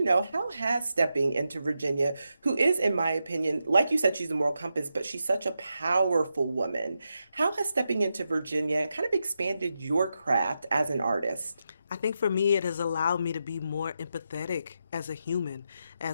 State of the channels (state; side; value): inverted; both; correlation -0.87